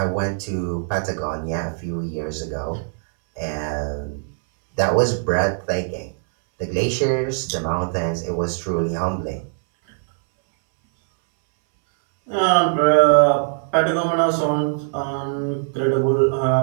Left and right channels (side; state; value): left; silent; 65 dB below the other